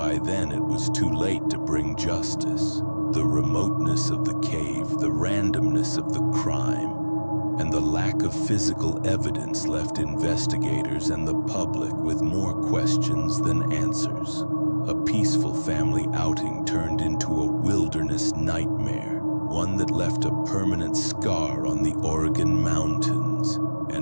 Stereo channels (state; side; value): inverted; both; correlation -1.00